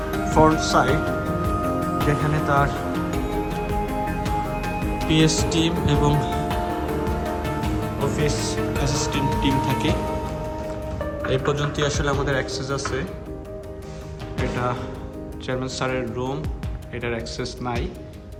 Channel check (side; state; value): both; identical; correlation 1.00